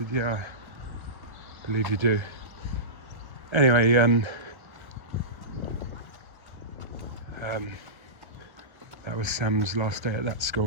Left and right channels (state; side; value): late; left; 1.3 ms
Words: "Yeah, I believe you do." Anyway, that was Sam's last day at that